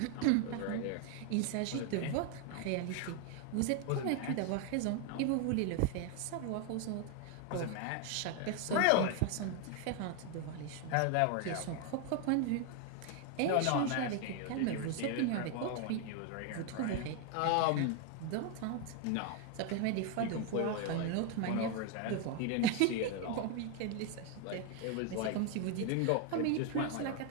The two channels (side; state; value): both; different; correlation 0.01